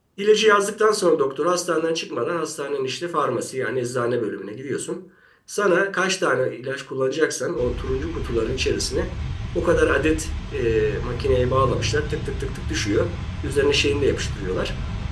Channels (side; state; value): both; identical; correlation 1.00